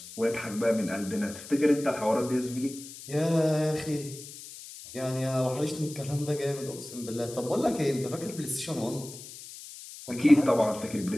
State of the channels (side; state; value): left; noise; hiss, 14 dB below the sound